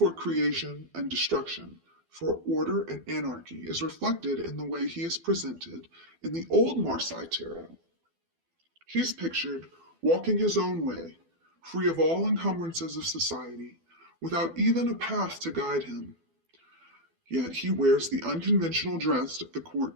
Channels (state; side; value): late; left; 12 ms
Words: creation and destruction, for order and anarchy, is reflected in the way he is presented in the old Marseille tarot. He's pictured walking his own way, free of all encumbrances of society, without even a path to guide him. Yet he wears the unconventional dress of the